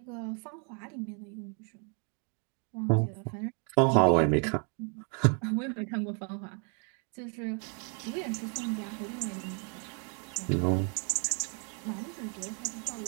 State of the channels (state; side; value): quieter; left; 39.5 dB